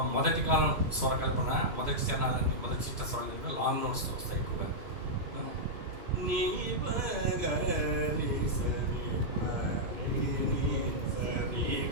మొదటి కాలం స్వరకల్పన, మొదటి చరణాలన్నీ మొదటి చిత్తస్వరాల దగ్గర లాంగ్ నోట్స్తో వస్తాయి ఎక్కువగా. నీ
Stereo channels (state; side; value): late; left; 3.0 ms